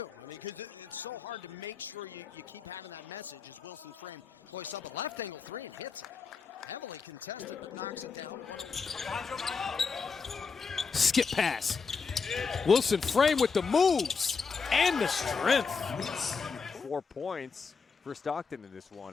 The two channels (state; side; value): quieter; right; 5.2 dB